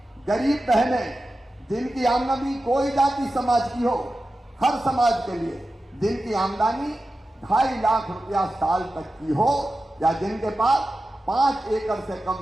गरीब बहनें, जिनकी आमदनी कोई जाति समाज की हो, हर समाज के लिए जिनकी आमदनी 2.5 लाख रुपया साल तक की हो, या जिनके पास 5 एकड़ से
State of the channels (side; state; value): both; normal; correlation 0.93